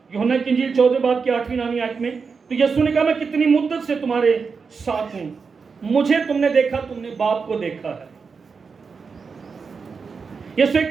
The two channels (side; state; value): left; quieter; 5.2 dB